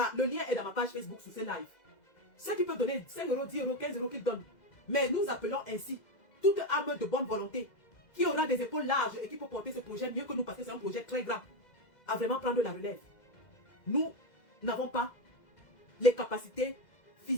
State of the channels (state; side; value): late; right; 2.0 ms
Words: le lien est dans ma page Facebook sous ce live. Ceux qui peuvent donner 5 €, 10 €, 15 € qu'ils donnent. Mais nous appelons ainsi toute âme de bonne volonté qui aura des épaules larges et qui peut porter ce projet mieux que nous parce que c'est un projet très grand à vraiment prendre la relève. Nous n'avons pas les capacités